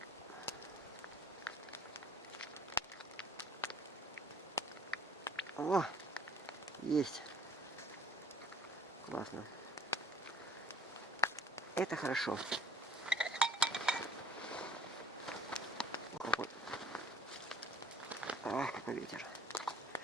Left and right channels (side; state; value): both; normal; correlation 0.53